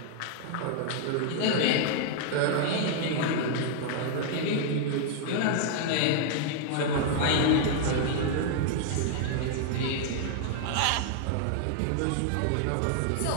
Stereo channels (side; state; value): both; different; correlation 0.00